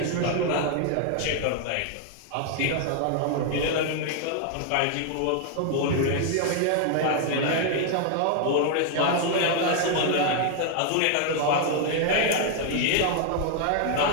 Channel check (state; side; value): different; both; correlation 0.00